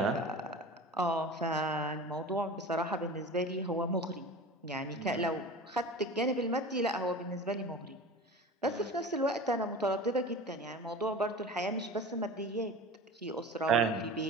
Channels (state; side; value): normal; both; correlation 0.35